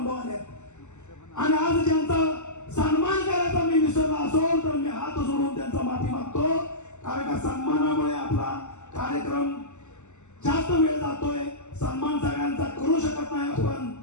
आले आणि आज ज्यांचा सन्मान करायचा मी विसरला असेल तर मी हात जोडून त्यांचा माफी मागतो. कारण का सन्मानामुळे आपला कार्यक्रम जास्त वेळ जातोय. सन्मान सगळ्यांचा करू शकत नाही आपण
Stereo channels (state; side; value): late; right; 0.84 ms